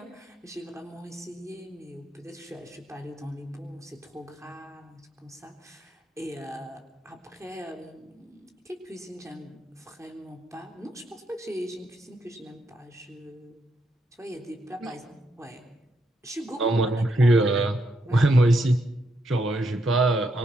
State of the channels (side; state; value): both; normal; correlation 0.79